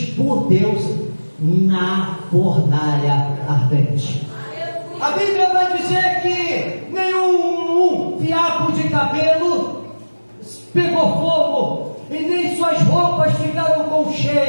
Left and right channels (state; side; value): inverted; both; correlation -1.00